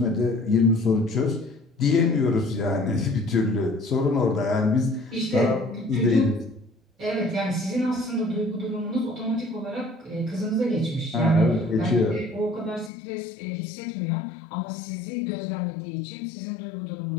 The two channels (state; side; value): drops out; right; at 12.9 s